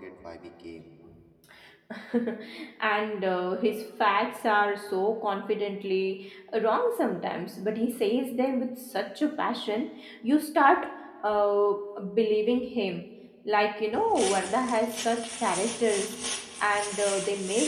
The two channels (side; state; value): both; identical; correlation 1.00